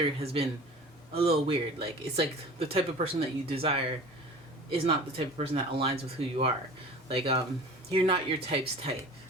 has been a little weird. Like, it's like the type of person that you desire is not the type of person that aligns with who you are. Like, you're not your type's type.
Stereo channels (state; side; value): normal; both; correlation 0.40